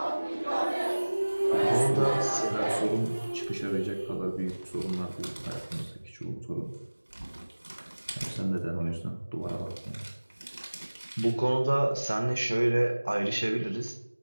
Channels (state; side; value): inverted; both; correlation -1.00